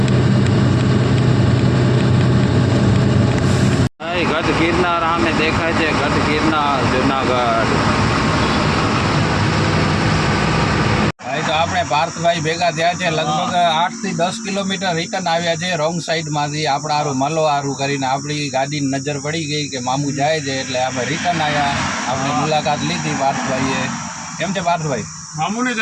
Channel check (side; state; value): both; identical; correlation 1.00